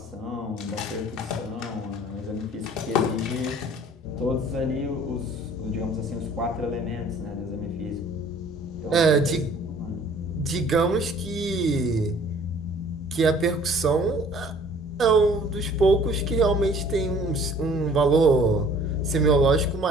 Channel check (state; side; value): normal; both; correlation 0.53